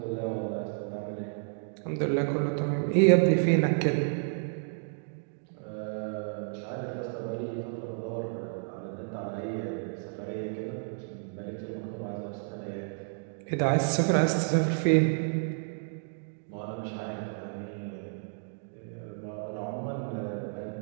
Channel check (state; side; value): silent; left; digital silence